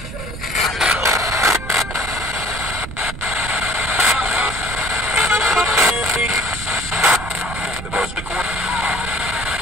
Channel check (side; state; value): right; noise; rumble, 10 dB below the sound